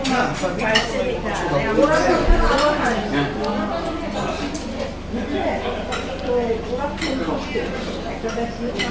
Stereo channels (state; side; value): identical; both; correlation 1.00